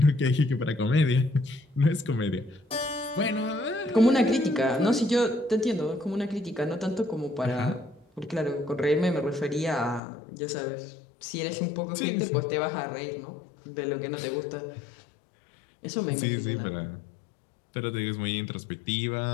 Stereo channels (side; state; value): right; drops out; at 10.0 s